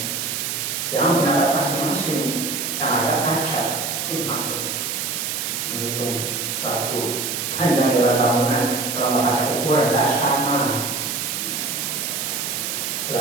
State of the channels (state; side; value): noise; right; hiss, 2 dB below the sound